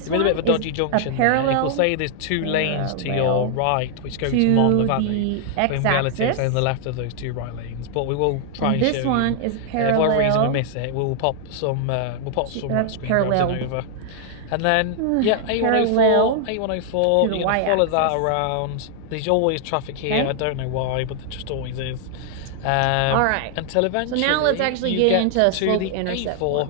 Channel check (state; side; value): different; both; correlation 0.00